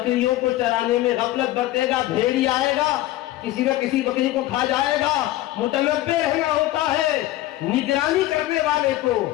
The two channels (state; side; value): quieter; right; 15.8 dB